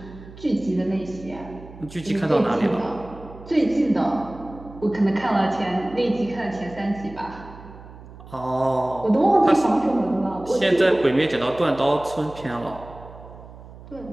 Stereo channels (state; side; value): noise; right; hum, 18 dB below the sound